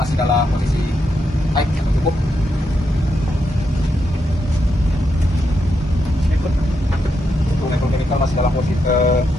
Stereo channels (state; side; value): normal; both; correlation 0.82